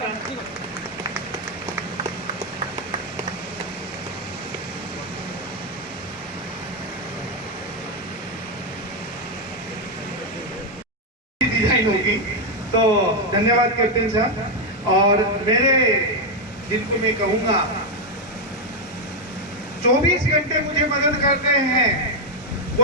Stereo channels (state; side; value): normal; both; correlation 0.03